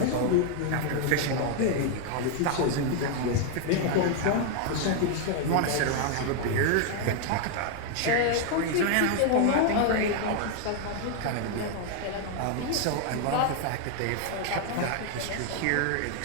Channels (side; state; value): both; different; correlation 0.00